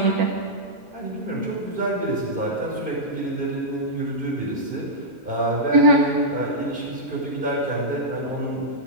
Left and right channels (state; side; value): normal; both; correlation -0.10